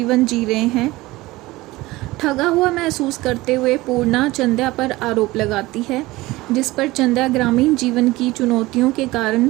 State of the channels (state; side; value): quieter; left; 19.5 dB